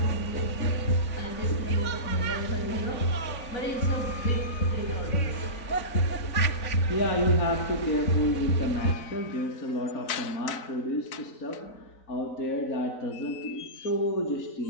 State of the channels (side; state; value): right; late; 4.0 ms